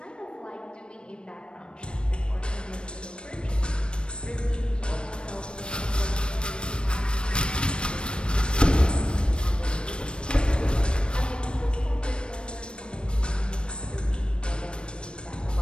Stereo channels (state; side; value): late; right; 0.055 ms